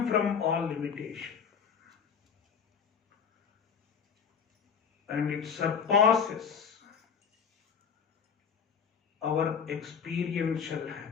from all limitation. And it surpasses our experiential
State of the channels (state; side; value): quieter; right; 6.8 dB